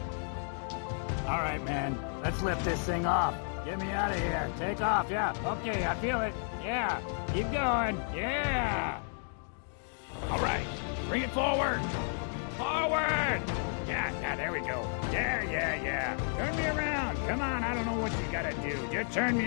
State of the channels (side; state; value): right; silent; 56 dB below the other